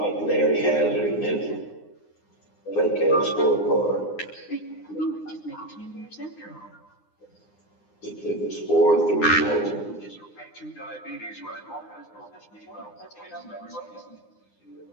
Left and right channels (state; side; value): late; right; 9.7 ms